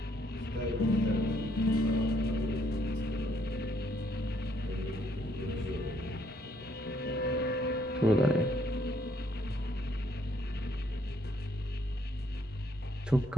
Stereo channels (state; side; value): normal; both; correlation 0.70